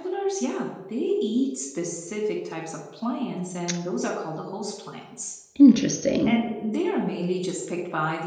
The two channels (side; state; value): both; identical; correlation 1.00